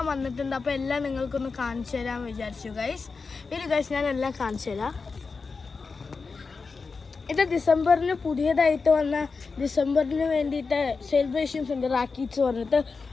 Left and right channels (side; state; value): right; quieter; 4.6 dB